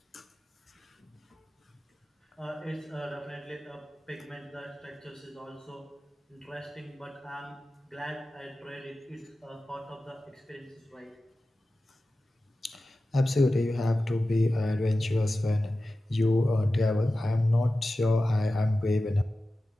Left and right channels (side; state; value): both; normal; correlation 0.94